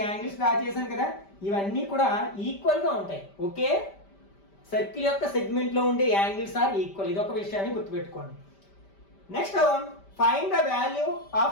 యాంగిల్స్ డ్రా చేశాను కదా, ఇవన్నీ కూడా ఈక్వల్ గా ఉంటాయి. ఒకే సర్కిల్ యొక్క సెగ్మెంట్ లో ఉండే యాంగిల్స్ ఆర్ ఈక్వల్. ఇది ఒక విషయాన్ని గుర్తుపెట్టుకోండి. Next, find the value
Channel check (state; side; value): late; right; 5.1 ms